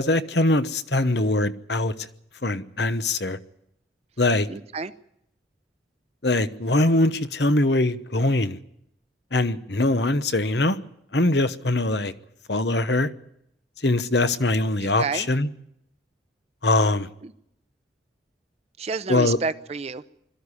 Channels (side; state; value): both; normal; correlation 0.43